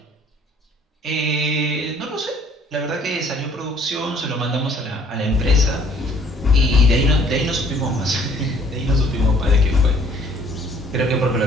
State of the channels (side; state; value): both; normal; correlation 0.58